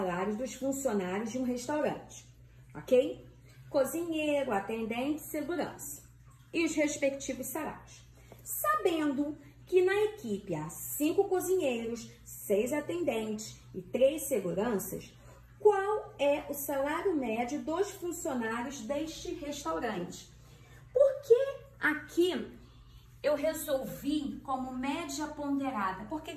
dos funcionários de um restaurante, ok? Cozinheiro, atendente, segurança. E os respectivos salários. Sabendo que na equipe há 5 cozinheiros, 6 atendentes e 3 seguranças, qual é o salário médio dos funcionários deste restaurante? Por que aqui eu resolvi como média ponderada? Porque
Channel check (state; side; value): identical; both; correlation 1.00